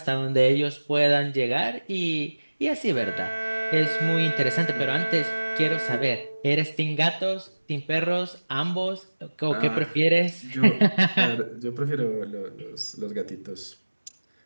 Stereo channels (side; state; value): both; inverted; correlation -1.00